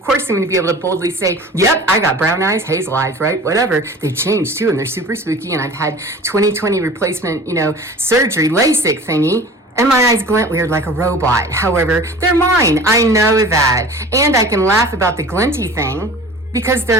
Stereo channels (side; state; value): both; normal; correlation 0.41